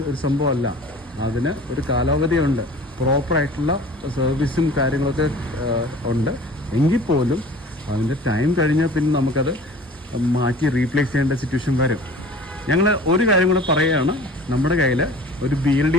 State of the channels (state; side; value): normal; both; correlation 0.44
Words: ഒരു സംഭവമല്ല. അതിന് ഒരു കാലാവധിയുണ്ട്, പ്രോപ്പറായിട്ടുള്ള സർവീസും കാര്യങ്ങളൊക്കെ ഉണ്ട്. എങ്കിൽ പോലും അതിൻ്റെ ടൈം കഴിഞ്ഞാൽ പിന്നെ നമുക്കത് മാറ്റി റീപ്ലേസ് ചെയ്യേണ്ട സിറ്റുവേഷൻ വരും. ഞങ്ങൾ ഒരു കാര്യം കൂടെ പറയുകയാണ്, നമ്മുടെ കയ്യിൽ ഒരു